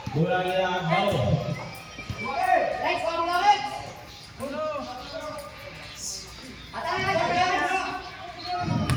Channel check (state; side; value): identical; both; correlation 1.00